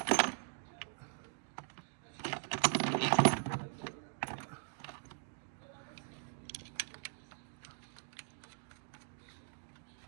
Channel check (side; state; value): left; silent; digital silence